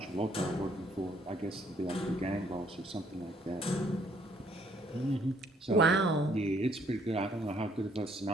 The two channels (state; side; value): normal; both; correlation 0.66